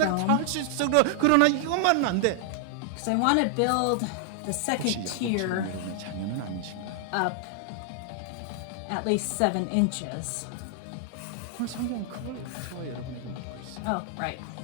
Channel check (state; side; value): different; both; correlation 0.00